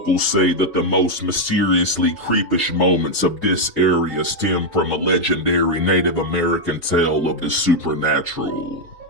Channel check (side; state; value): both; normal; correlation 0.01